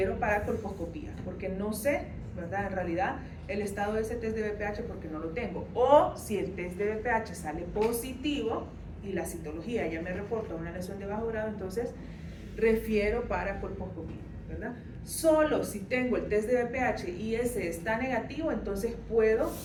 para colposcopía, porque no sé, ¿verdad? En realidad el estado de ese test de BPH porque no lo tengo. O si el test de BPH sale positivo y la citología ya me reporta una lesión de bajo grado, entonces refiero para colposcopía, ¿verdad? Solo si tengo el test de BPH y ese está negativo, entonces puedo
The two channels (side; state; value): both; identical; correlation 1.00